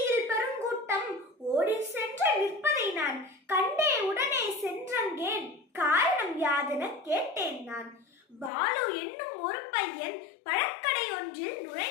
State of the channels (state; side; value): drops out; right; at 8.5 s